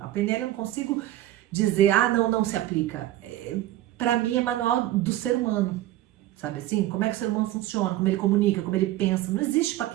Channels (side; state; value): left; quieter; 14.6 dB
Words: PNL eu não consigo dizer, não se aplica. Para mim é manual do ser humano, sabe assim? Como é que o ser humano funciona, como ele comunica, como ele pensa. Não existe para